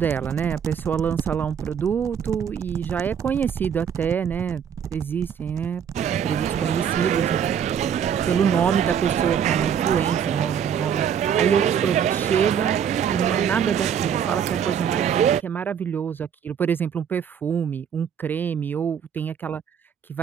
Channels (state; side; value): quieter; left; 8.1 dB